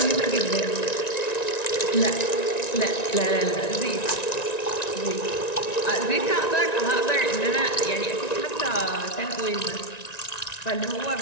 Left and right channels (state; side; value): late; right; 1.9 ms